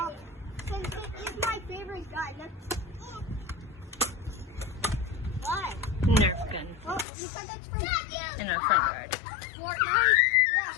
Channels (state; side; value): drops out; right; at 7.1 s